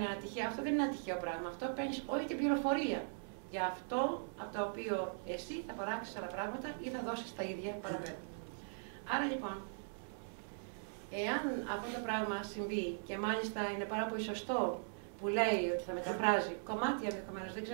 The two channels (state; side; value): silent; left; 51 dB below the other